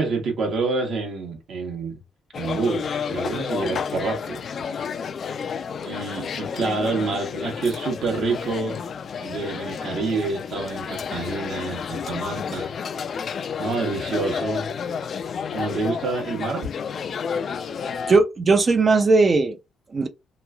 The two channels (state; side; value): normal; both; correlation 0.75